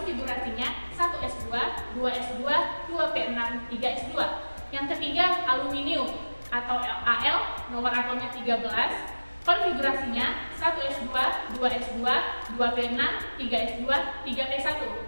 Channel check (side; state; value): both; inverted; correlation -1.00